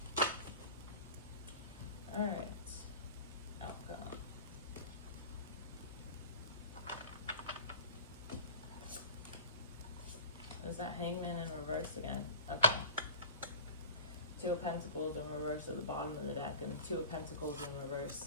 Alright, outcome. Is that Hangman in reverse again? Okay. 2 of Pentacles in reverse at the bottom of the deck, and 2 of Pentacles in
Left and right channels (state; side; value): inverted; both; correlation -0.35